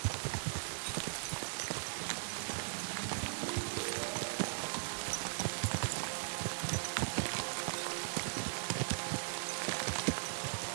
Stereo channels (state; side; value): silent; left; digital silence